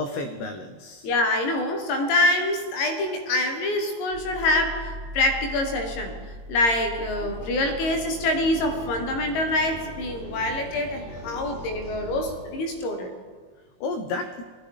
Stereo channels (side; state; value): right; late; 22 ms